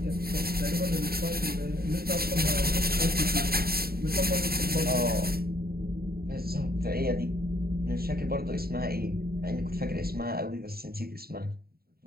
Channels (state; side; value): late; left; 0.45 ms